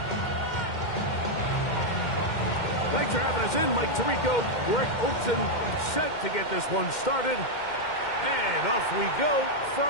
Thanks for having us in, Mike Tirico. Greg Olson set to get this one started. And off we go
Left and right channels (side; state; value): right; late; 2.1 ms